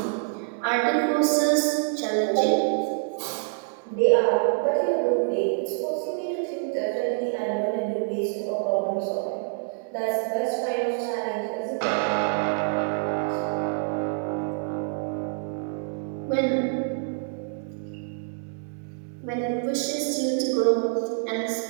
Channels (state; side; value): silent; left; 61 dB below the other